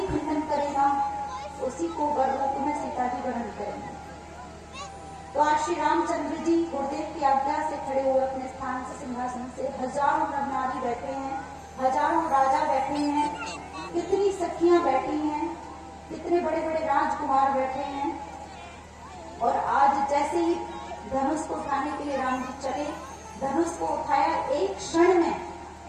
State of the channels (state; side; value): identical; both; correlation 1.00